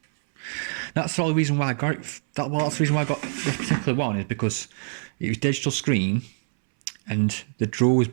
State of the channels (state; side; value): silent; left; 62 dB below the other